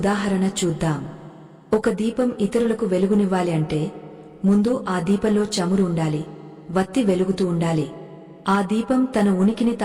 చూద్దాం. ఒక దీపం ఇతరులకు వెలుగునివ్వాలి అంటే ముందు ఆ దీపంలో చమురు ఉండాలి, వత్తి వెలుగుతూ ఉండాలి. ఆ దీపం తన ఉనికిని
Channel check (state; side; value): identical; both; correlation 1.00